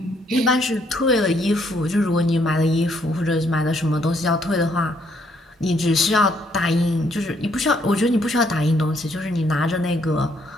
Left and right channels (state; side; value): normal; both; correlation 0.70